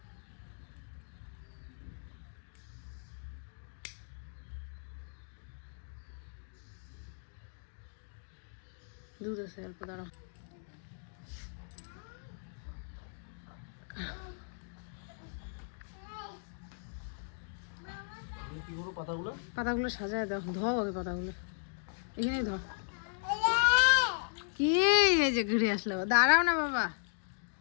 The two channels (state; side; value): silent; right; digital silence